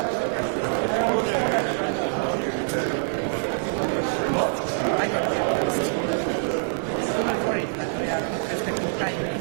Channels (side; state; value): left; silent; 62 dB below the other